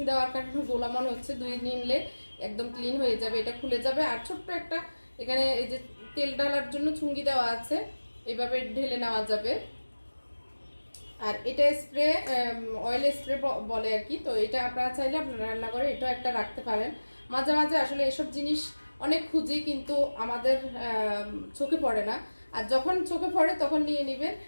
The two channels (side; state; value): both; inverted; correlation -1.00